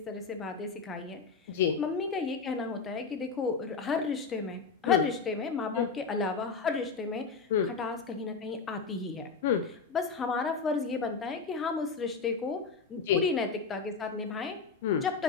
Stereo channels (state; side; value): quieter; right; 5.0 dB